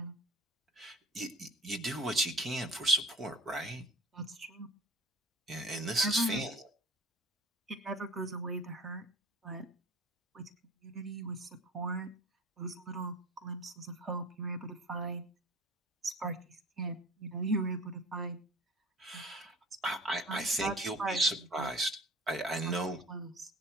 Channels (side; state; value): both; normal; correlation 0.43